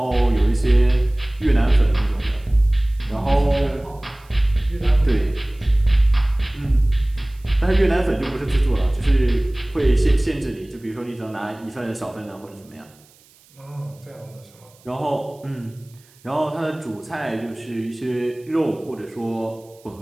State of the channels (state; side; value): noise; right; hiss, 29 dB below the sound